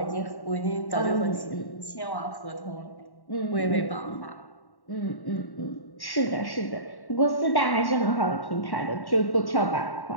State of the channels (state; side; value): late; right; 1.1 ms